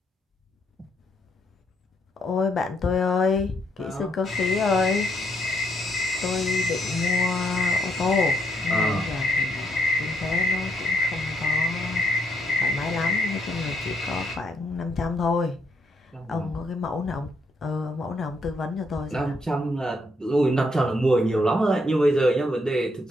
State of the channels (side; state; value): both; normal; correlation 0.73